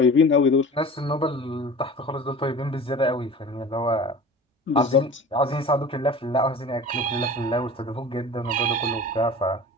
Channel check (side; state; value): both; normal; correlation 0.38